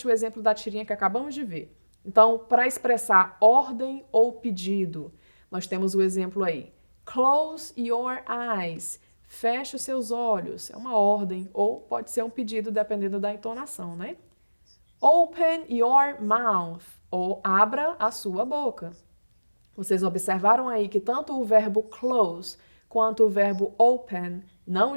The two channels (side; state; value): both; inverted; correlation -1.00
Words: o exemplo da tirinha que acabamos de ver. Então, para expressar ordem ou pedido, nós temos o exemplo aí. Close your eyes. Feche os seus olhos. É uma ordem ou pode ser um pedido dependendo da entonação, né? Open your mouth. Ou abra a sua boca. Vocês observaram aí que tanto o verbo close quanto o verbo open não